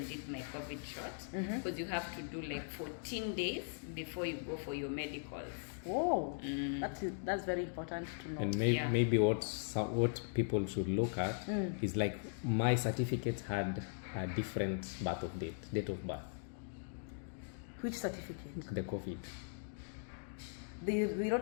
did my COVID shot, because you have to do 14 days before you go for your medicals. Oh, that's very important to know. And maybe what people should look at is my certificate had a different date of birth. Which certificate? The COVID. They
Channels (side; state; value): right; silent; digital silence